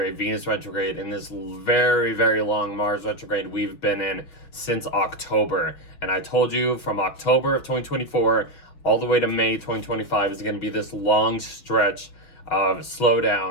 Venus retrograde, and this very, very long Mars retrograde we've been in since October. And I told you from October of 2024 all the way to May 2025 is going to be this long stretch of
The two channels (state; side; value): late; right; 5.9 ms